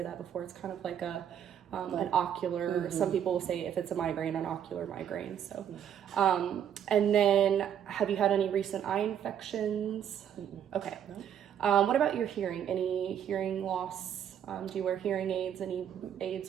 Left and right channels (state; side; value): quieter; left; 9.4 dB